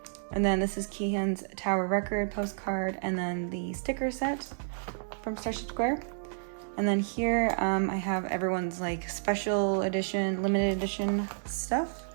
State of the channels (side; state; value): left; silent; digital silence